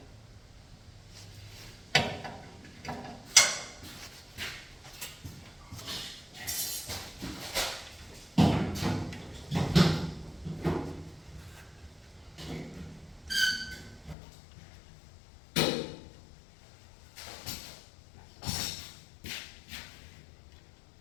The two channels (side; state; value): right; drops out; at 14.2 s